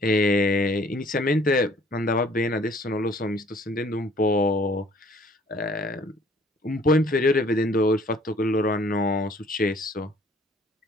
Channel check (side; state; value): both; normal; correlation 0.57